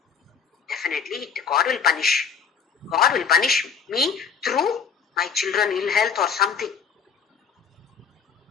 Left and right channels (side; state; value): right; quieter; 6.3 dB